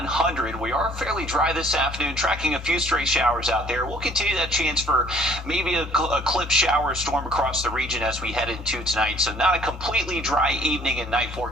We are fairly dry this afternoon, tracking a few stray showers out there. We'll continue that chance for maybe a clip shower storm across the region as we head into tonight. So not a completely dry evening and night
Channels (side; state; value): both; normal; correlation 0.57